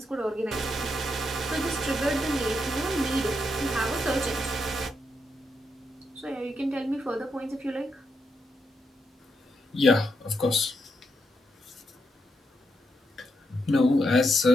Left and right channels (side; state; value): both; normal; correlation 0.82